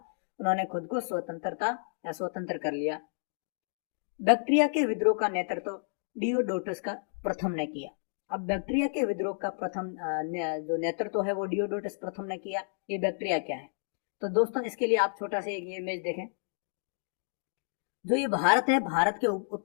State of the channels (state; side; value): silent; right; digital silence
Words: उन्होंने खुद को स्वतंत्र कर लिया। बैक्ट्रिया के विद्रोह का नेतृत्व डियोडोटस का प्रथम ने किया। अब बैक्ट्रिया के विद्रोह का प्रथम जो नेतृत्व है वो डियोडोटस प्रथम ने किया। ये बैक्ट्रिया क्या है? तो दोस्तों इसके लिए आप छोटा सा एक इमेज देखें। जो ये भारत है, भारत के